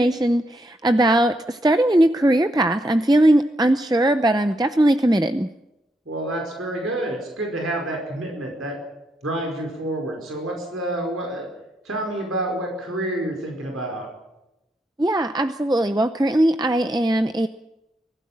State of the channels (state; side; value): normal; both; correlation 0.79